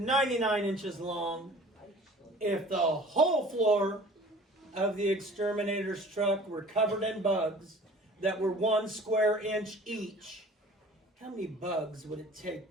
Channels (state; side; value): normal; both; correlation 0.47